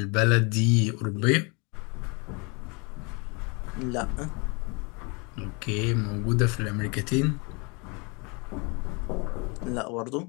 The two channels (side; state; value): right; quieter; 30.9 dB